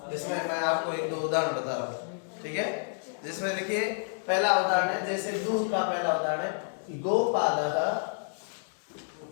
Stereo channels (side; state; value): right; silent; digital silence